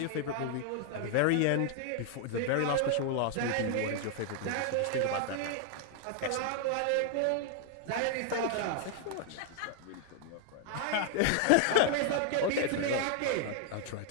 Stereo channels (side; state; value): both; different; correlation 0.00